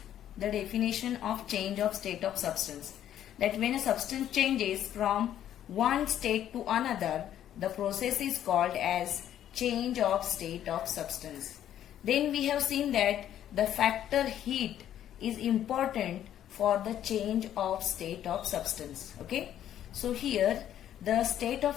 the definition of change of state of substance. That when a substance changes from one state to another, the process is called as change of state of substance. Then we have seen that the factor heat is important for the change of state of substance. Okay, so here the state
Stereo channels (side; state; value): right; quieter; 11.0 dB